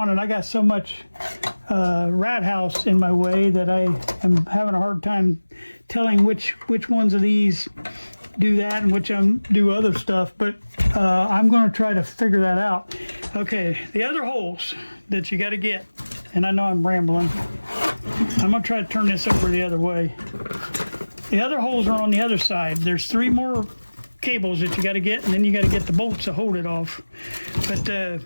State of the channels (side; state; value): both; inverted; correlation -1.00